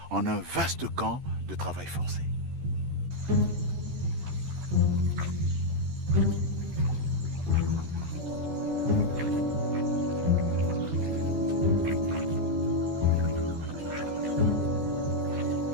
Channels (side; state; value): left; late; 13 ms